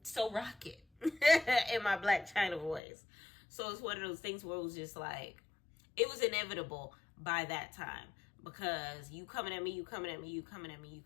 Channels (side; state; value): right; drops out; at 2.8 s